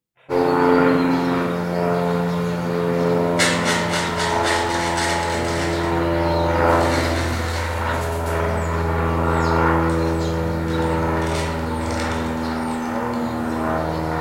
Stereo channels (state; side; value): identical; both; correlation 1.00